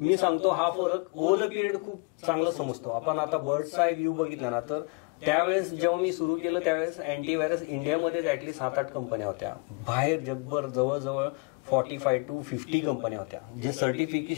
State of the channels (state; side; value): quieter; right; 32.1 dB